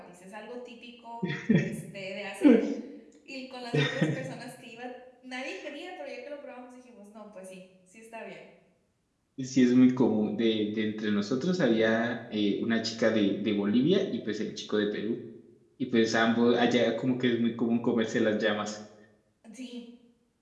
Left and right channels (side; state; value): both; identical; correlation 1.00